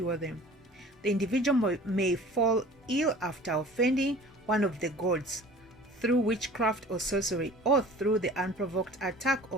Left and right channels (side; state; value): both; normal; correlation 0.45